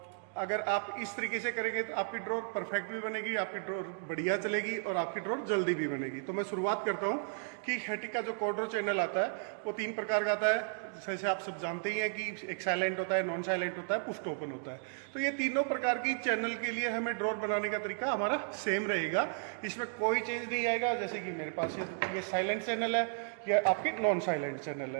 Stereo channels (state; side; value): silent; left; digital silence